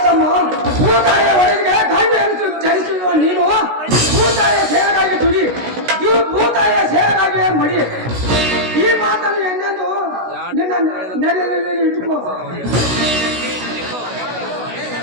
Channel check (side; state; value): left; late; 16 ms